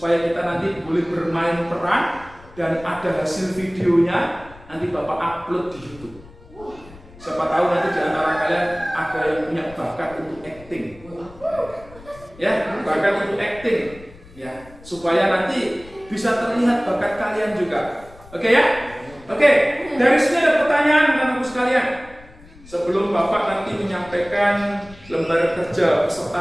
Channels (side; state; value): left; noise; rumble, 21 dB below the sound